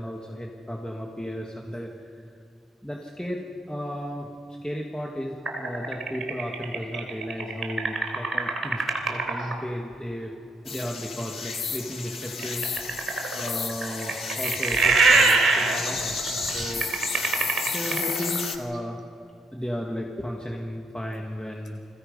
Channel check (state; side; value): normal; both; correlation 0.73